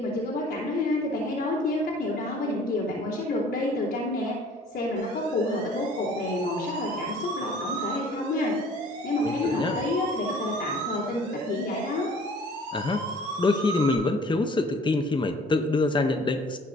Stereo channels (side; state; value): both; normal; correlation 0.51